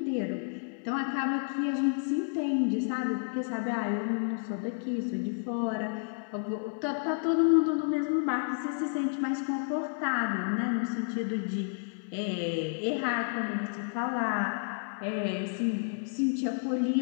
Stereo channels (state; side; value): silent; right; 57 dB below the other